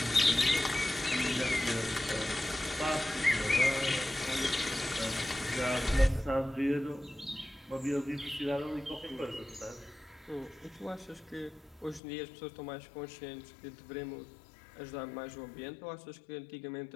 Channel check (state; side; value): drops out; right; at 12.0 s